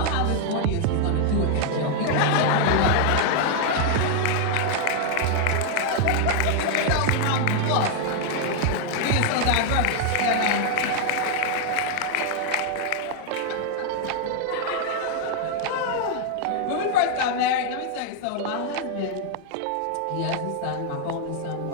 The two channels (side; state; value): both; different; correlation 0.00